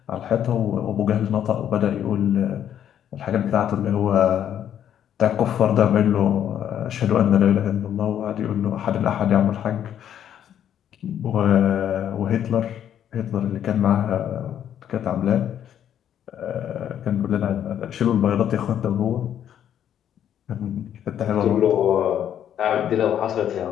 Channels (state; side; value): quieter; right; 9.9 dB